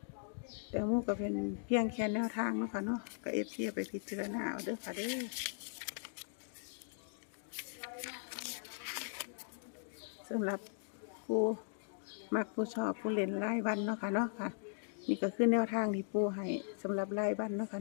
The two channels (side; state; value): right; silent; digital silence